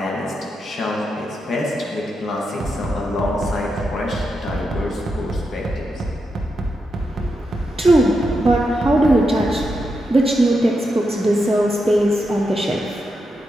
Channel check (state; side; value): normal; both; correlation 0.85